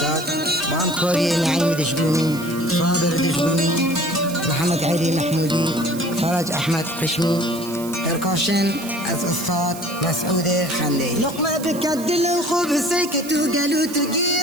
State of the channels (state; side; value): noise; right; hiss, 14 dB below the sound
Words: با همکاری نعیم دشبونی، صابر دشبونی، محمد علی محمودی، فرج احمد قشمی. پرکاشن از استاد مسعود خندی. لقمه بکد لو خوب سکت و گلو تو